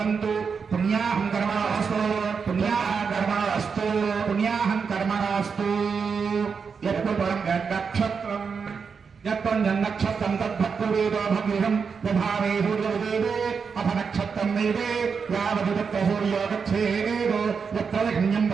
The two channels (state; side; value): quieter; left; 5.8 dB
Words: पुण्याहं कर्मणोऽस्तु पुण्याहं कर्मणोऽस्तु पुण्याहं कर्मणोऽस्तु यत्पुरं नक्षत्रम् यत्पञ्चनक्षत्रं तद्भक्तवेदो भग्निहं दधावे सूर्योदेवे अथ नक्षत्रं वेदे यावत् तत्र सूर्यो गच्छेदो यत्र लग्न्यं